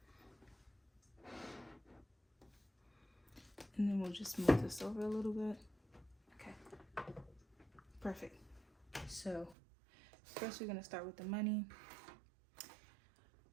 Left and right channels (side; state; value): left; drops out; at 9.6 s